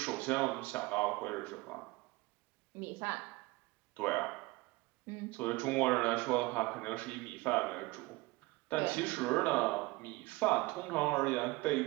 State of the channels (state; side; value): quieter; left; 22.1 dB